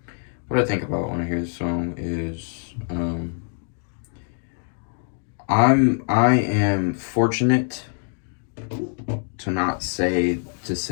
What I think about when I hear this song is, I am fortunate to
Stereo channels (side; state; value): right; silent; 55 dB below the other